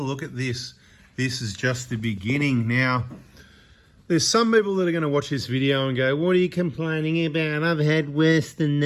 at this. This is just the beginning. Now, there's some people that are going to watch this video and go, what are you complaining about? I've had worse than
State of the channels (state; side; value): identical; both; correlation 1.00